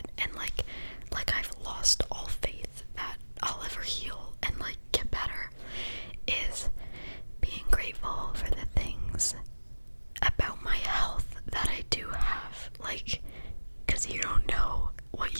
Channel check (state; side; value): inverted; both; correlation -1.00